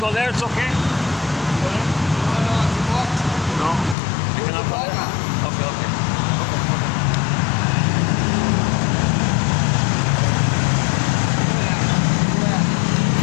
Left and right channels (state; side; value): drops out; right; at 4.0 s